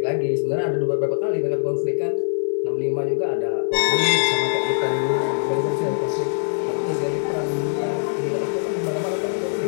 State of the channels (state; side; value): silent; right; digital silence